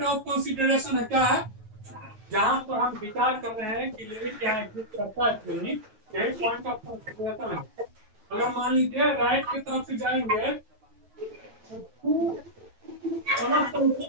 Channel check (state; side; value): late; left; 9.4 ms